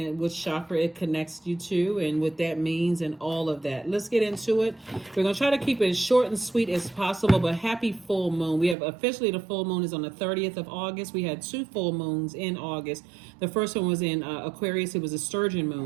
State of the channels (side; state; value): left; drops out; at 8.8 s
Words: which chakra it connects you to and what that means and all of that. Let's get into it. We're going to try to keep it as short and sweet as possible, but happy full moon. We have officially the full moon is on the 30th of August. We had two full moons in August. The first one was in Aquarius. It was a sturgeon